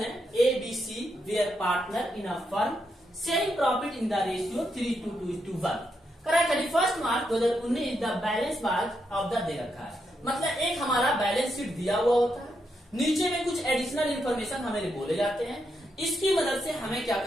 ABC were partner in a firm sharing profit in the ratio 3:2:1। Correct. 31 March 2019 the balance बाज ऑफ द दे रखा है, मतलब एक हमारा बैलेंस शीट दिया हुआ होता है, नीचे में कुछ एडिशनल इंफॉर्मेशन हमें बोले जाते हैं। इसकी मदद से हमें क्या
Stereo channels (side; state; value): both; normal; correlation 0.81